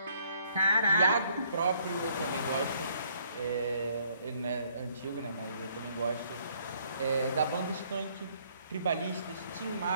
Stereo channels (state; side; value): inverted; both; correlation -0.65